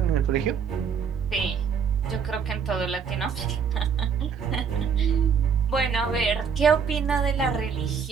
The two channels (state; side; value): quieter; left; 6.6 dB